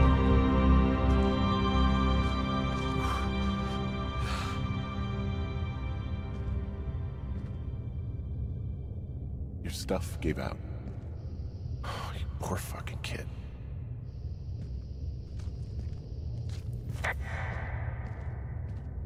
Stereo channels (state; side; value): identical; both; correlation 1.00